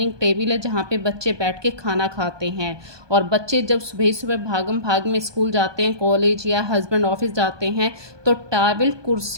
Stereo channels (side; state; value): left; late; 1.2 ms